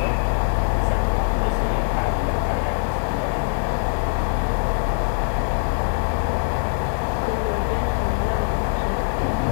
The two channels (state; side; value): silent; right; digital silence